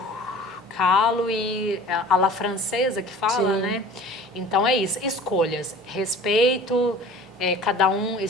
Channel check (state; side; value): normal; both; correlation 0.44